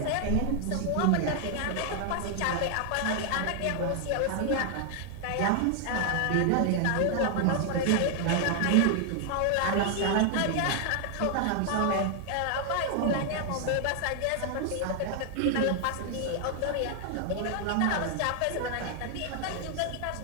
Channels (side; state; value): both; different; correlation 0.00